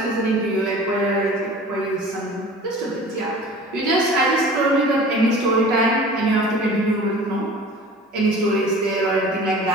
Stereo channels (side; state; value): both; normal; correlation 0.42